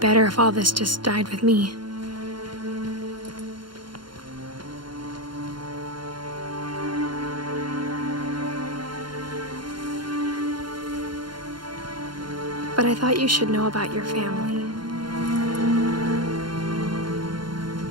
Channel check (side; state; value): left; late; 0.72 ms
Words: if all this just died with me. But I thought you should know about your family.